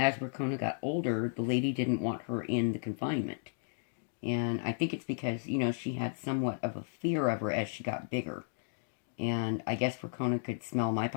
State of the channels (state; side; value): silent; right; digital silence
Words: Rakona got older, the lady didn't want her in the confinement. And I think it's because, you know, she had somewhat of a fear of her as she got bigger. And I guess Rakona could smell my